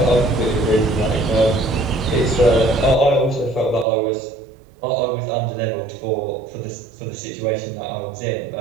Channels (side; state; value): left; drops out; at 3.9 s